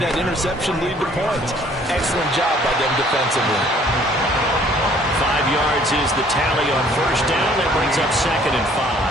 that interception lead to points. Excellent job by them defensively. 5 yards is the tally on first down. That brings up 2nd and 5.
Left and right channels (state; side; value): normal; both; correlation 0.58